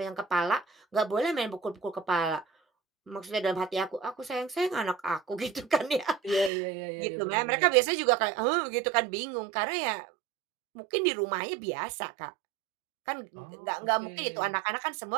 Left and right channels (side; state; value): left; drops out; at 6.5 s